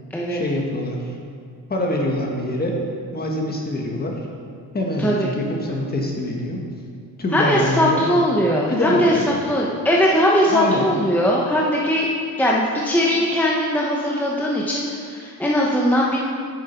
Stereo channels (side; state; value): both; normal; correlation 0.46